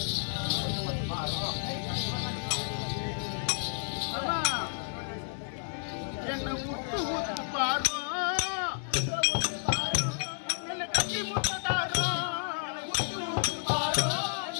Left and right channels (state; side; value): silent; right; 57 dB below the other